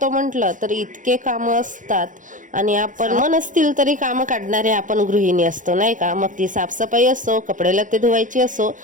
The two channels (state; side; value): late; left; 0.37 ms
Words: म्हटलं तर इतके कामं असतात, आणि आपण नसतील तरी कामं काढणारे आपण गृहिणी असतो, नाही का? मग ती साफसफाई असो, कपडे लत्ते धुवायची असो,